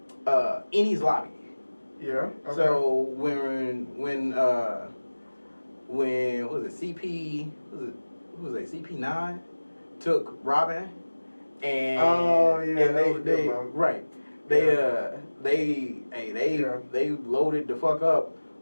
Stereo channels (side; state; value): both; inverted; correlation -1.00